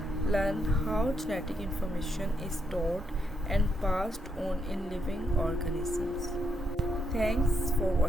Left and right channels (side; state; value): both; normal; correlation 0.78